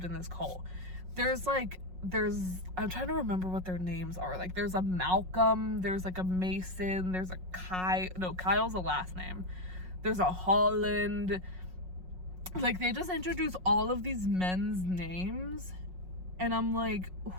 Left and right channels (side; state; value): left; late; 5.5 ms